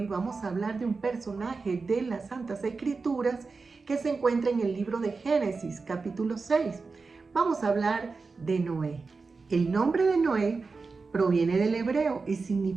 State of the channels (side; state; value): left; quieter; 4.3 dB